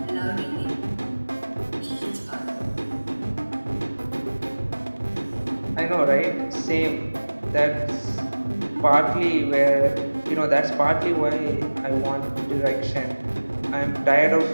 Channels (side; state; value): both; inverted; correlation -1.00